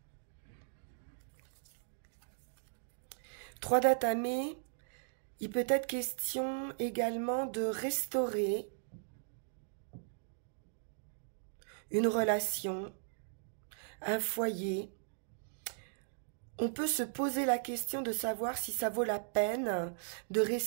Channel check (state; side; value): silent; left; digital silence